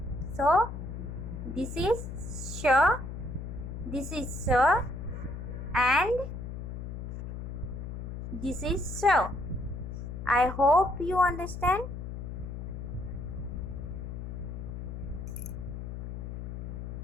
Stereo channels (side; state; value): left; noise; hum, 7 dB below the sound